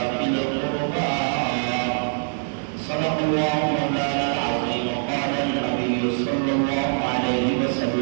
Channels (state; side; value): silent; left; digital silence